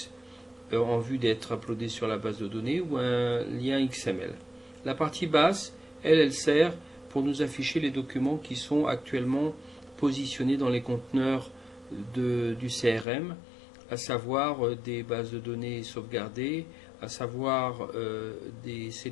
en vue d'être uploadés sur la base de données ou un lien XML. La partie basse, elle sert pour nous afficher les documents qui sont actuellement positionnés dans les conteneurs du CRM, à savoir des bases de données sauvegardées, à savoir des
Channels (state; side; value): drops out; right; at 13.1 s